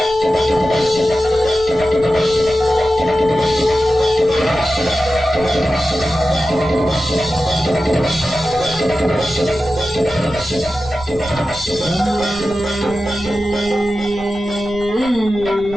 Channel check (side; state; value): right; noise; rumble, 17 dB below the sound